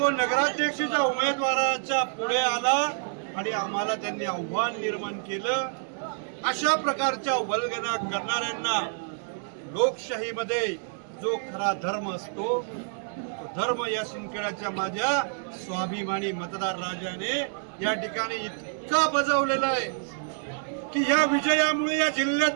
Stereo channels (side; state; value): left; silent; digital silence